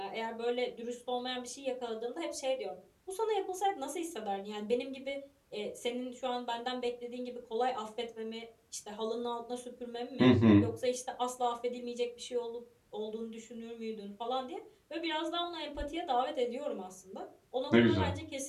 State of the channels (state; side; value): identical; both; correlation 1.00